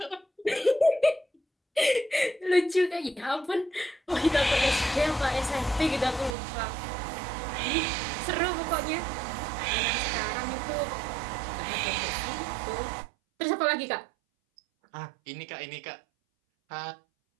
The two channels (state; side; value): drops out; left; at 6.4 s